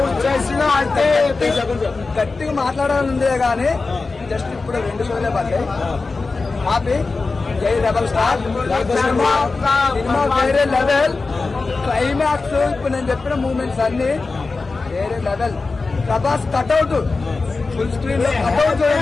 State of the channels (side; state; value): right; quieter; 3.9 dB